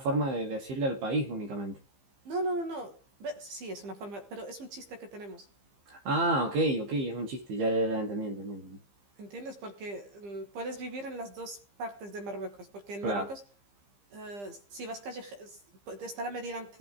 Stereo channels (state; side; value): late; left; 15 ms